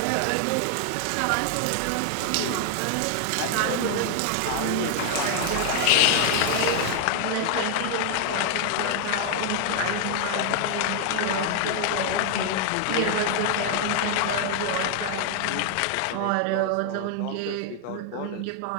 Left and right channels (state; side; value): different; both; correlation 0.00